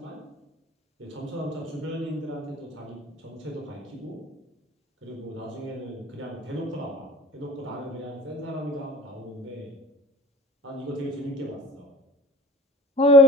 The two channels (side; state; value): both; normal; correlation 0.44